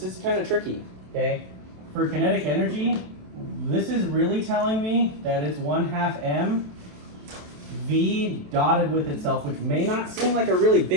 kind of tricky. Okay. For kinetic energy, this is really telling me that it's 1/2 m v dotted with itself, which may not seem like a really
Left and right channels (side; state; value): left; late; 27 ms